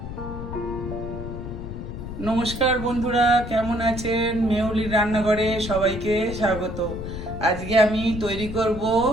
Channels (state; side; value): noise; left; rumble, 8 dB below the sound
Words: নমস্কার বন্ধুরা, কেমন আছেন? মেহুলির রান্নাঘরে সবাইকে স্বাগত। আজকে আমি তৈরি করব